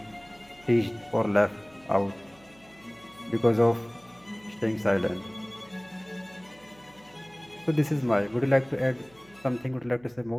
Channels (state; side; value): noise; right; hum, 28 dB below the sound